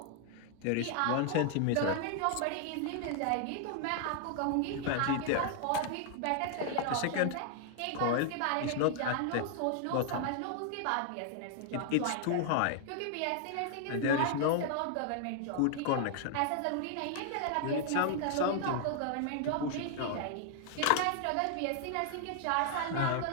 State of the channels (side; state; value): both; different; correlation 0.00